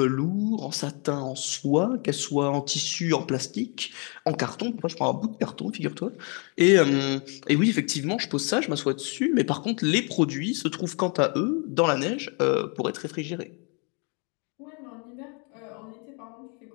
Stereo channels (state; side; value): quieter; right; 35.2 dB